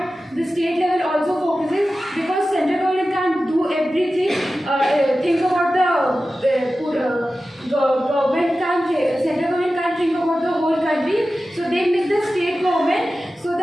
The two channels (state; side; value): normal; both; correlation 0.94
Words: the state level also focuses, because central government can't do everything. Think about central government can't think about the whole country, so they make the state government so